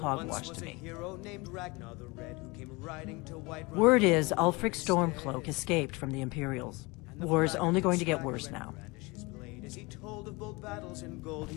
to me. Word is Ulfric Stormcloak escaped from the Imperials. War's only going to get worse now. As he told of bold battles in gold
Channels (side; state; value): right; quieter; 25.3 dB